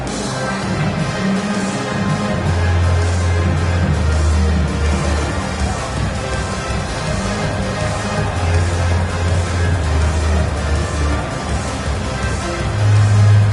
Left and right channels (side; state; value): both; identical; correlation 1.00